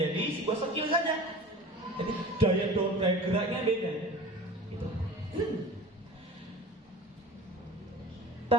sebuah skill saja. Jadi daya geraknya beda. Gitu.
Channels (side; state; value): both; normal; correlation 0.38